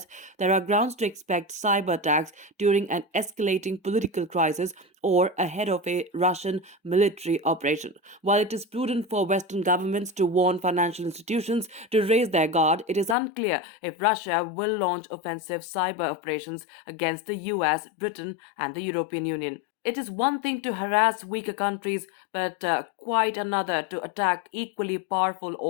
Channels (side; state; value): right; drops out; at 13.2 s